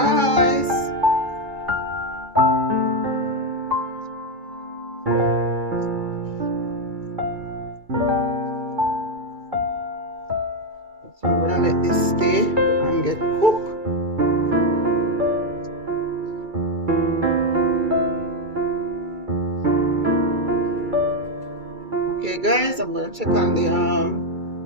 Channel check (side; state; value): left; late; 2.3 ms